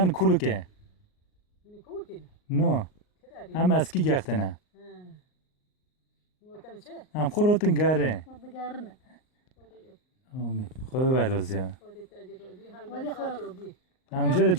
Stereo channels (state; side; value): late; right; 38 ms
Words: کولو که نو هم اسکی گختنه هم خورتن گره آمین خود برازی ها هم جره